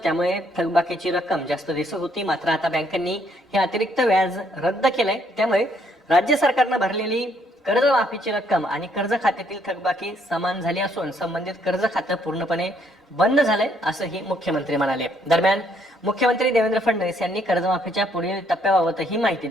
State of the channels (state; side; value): normal; both; correlation 0.69